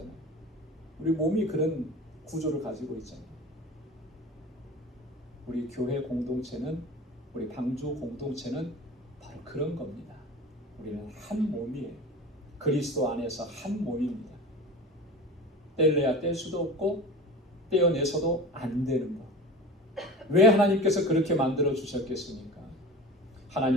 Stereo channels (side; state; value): both; normal; correlation 0.35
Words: 우리 몸이 그런 구조를 가지고 있잖아요. 우리 교회 공동체는, 우리 방주 공동체는 바로 그런 겁니다. 우리는 한 몸이에요. 그리스도 안에서 한 몸입니다. 뗄래야 뗄 수도 없고 떼어내서도 안 되는 것. 왜 하나님께서 그렇게 만들어 주셨겠습니까?